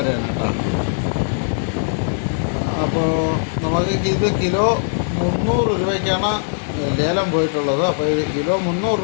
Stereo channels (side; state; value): right; silent; digital silence